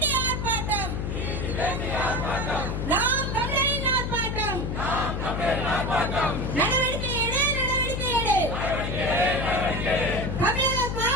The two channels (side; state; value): left; noise; hum, 2 dB below the sound